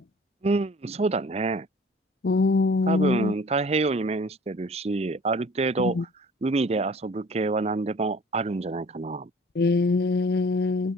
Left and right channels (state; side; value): normal; both; correlation 0.49